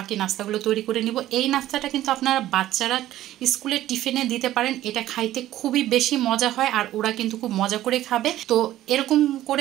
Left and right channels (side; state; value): left; quieter; 13.9 dB